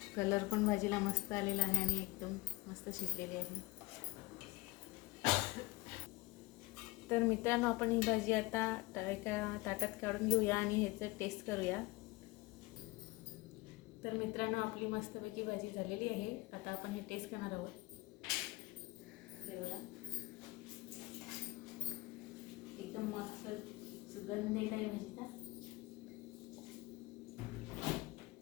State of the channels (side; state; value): right; quieter; 22.4 dB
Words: कलर पण भाजीला मस्त आलेला आहे आणि एकदम मस्त शिजलेली आहे. तर मित्रांनो, आपण ही भाजी आता एका ताटात काढून घेऊया आणि ह्याचं टेस्ट करूया. तर मित्रांनो, आपली मस्तपैकी भाजी झालेली आहे. आता आपण हे टेस्ट करणार आहोत. एकदम मस्त सुगंध येत आहे भाजीचा.